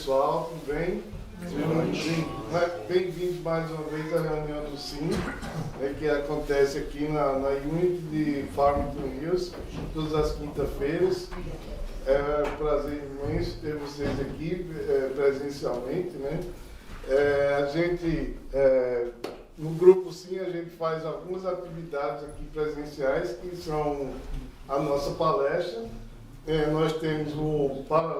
tudo bem? Bem-vindos mais uma vez à reunião do SIM, que acontece aqui na Unity de Farmington Hills, todas as quintas-feiras. É um prazer imenso ter vocês aqui presencialmente, né? No grupo SIM, a gente faz algumas atividades aqui presenciais, que são a nossa palestra. Nós temos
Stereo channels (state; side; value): identical; both; correlation 1.00